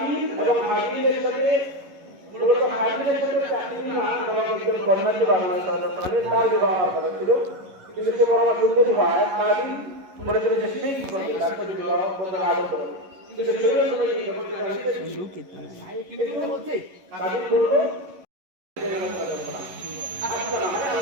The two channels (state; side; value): late; left; 11 ms